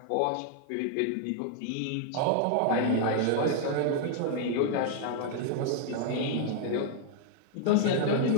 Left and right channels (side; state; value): both; different; correlation 0.00